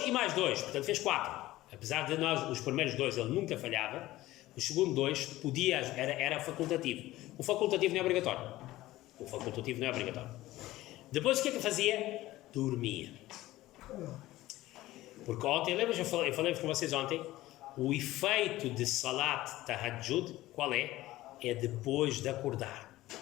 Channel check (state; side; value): quieter; right; 16.7 dB